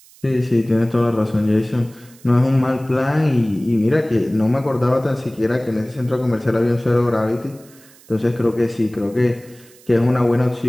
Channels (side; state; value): right; noise; hiss, 26 dB below the sound